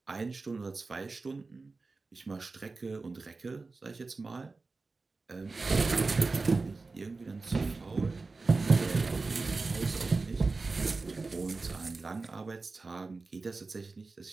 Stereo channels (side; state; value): left; quieter; 3.8 dB